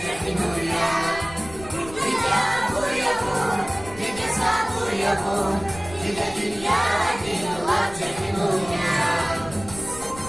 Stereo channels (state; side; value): noise; left; rumble, 16 dB below the sound